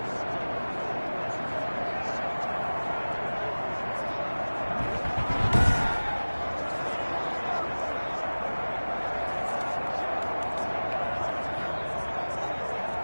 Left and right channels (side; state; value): both; inverted; correlation -1.00